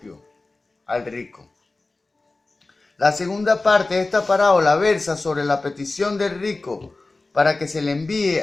al rico. La segunda parte de esta parábola versa sobre la petición del rico para que se le envíe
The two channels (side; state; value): right; quieter; 3.3 dB